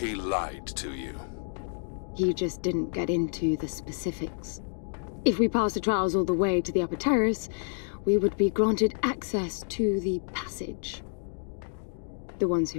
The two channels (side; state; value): right; silent; 59 dB below the other